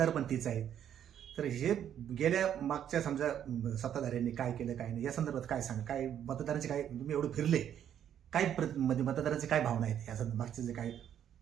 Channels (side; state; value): left; quieter; 9.7 dB